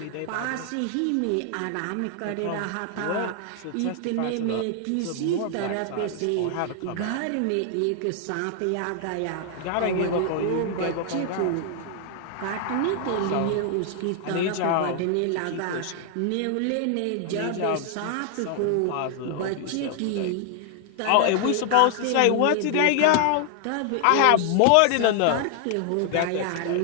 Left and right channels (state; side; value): different; both; correlation 0.00